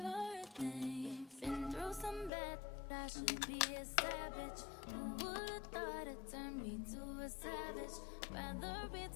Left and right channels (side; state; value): right; drops out; at 2.3 s